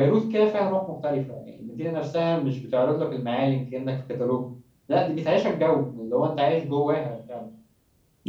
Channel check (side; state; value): both; identical; correlation 1.00